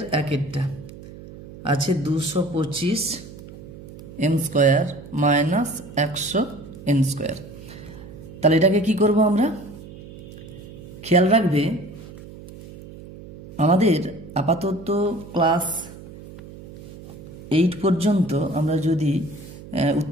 1-এরটা আছে 225 m square minus 100 n square. তাহলে এটাকে কি করব আমরা, খেয়াল রাখবে আমাদের আপাতত ক্লাস 8 পর্যন্ত আমরা যদি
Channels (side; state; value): right; noise; hum, 16 dB below the sound